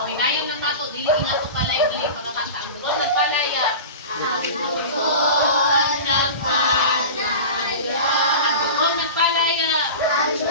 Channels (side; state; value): both; inverted; correlation -0.31